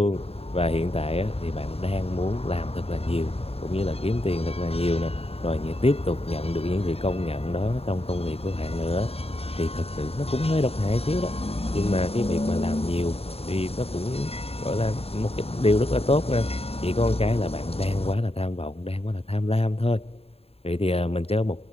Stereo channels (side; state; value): right; late; 0.29 ms